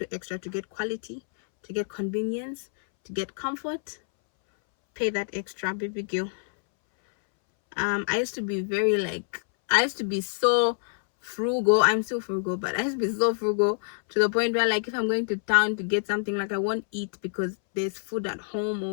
extra to get quality, to get convenience, to get comfort, pay that extra, baby girl. I used to be so frugal. I'm still frugal, but I used to be so frugal to the point where, like, if I'm going to town to get something, like, I won't eat because there's food at home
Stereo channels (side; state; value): right; silent; 60 dB below the other